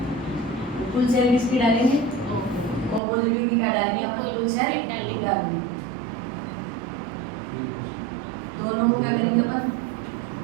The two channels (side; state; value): left; drops out; at 3.0 s